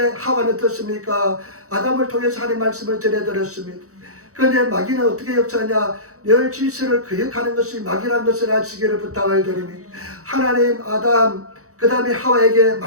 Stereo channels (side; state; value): left; late; 0.65 ms